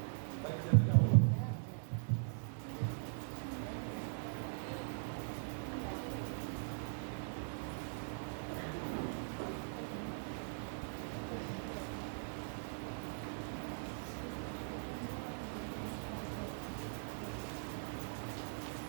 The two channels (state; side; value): silent; left; digital silence